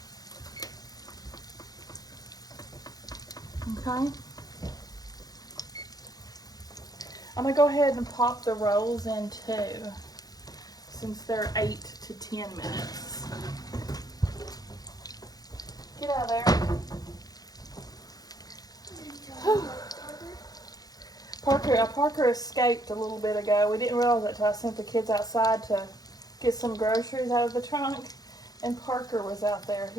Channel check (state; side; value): late; right; 0.19 ms